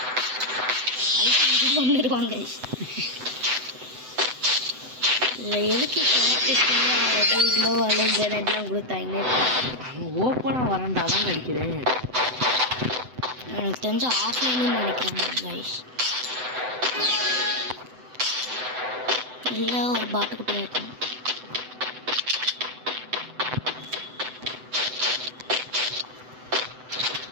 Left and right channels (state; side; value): late; left; 7.9 ms